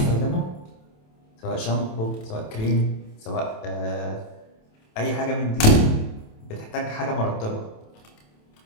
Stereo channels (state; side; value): late; right; 27 ms